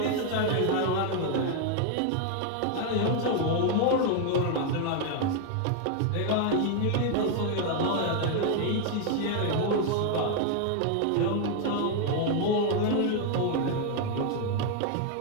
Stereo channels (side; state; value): both; different; correlation 0.00